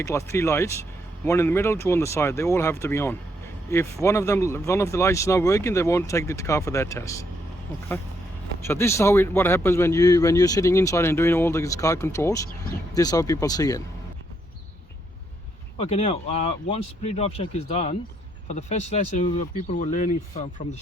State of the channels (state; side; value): normal; both; correlation 0.75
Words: lights, 3 lights, one in the middle, 2 on the side. They all have to be on. If one of the lights is not working, they won't take the car for that test. Okay. So this is what happens when you're sitting inside and doing all these car controls. This is how people see it. Okay, now once pre-drive check is done, for the first lesson, people were learning from the